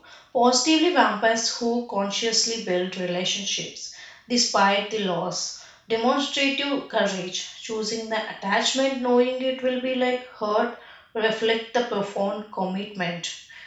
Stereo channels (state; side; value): identical; both; correlation 1.00